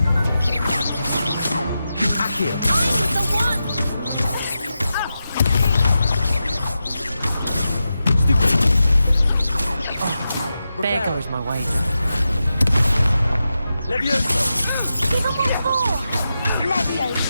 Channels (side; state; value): both; inverted; correlation -0.90